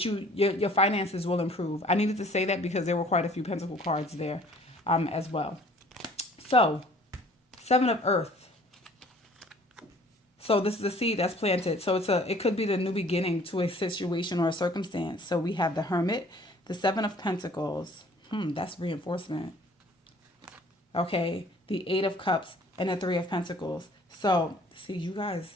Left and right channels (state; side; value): normal; both; correlation 0.54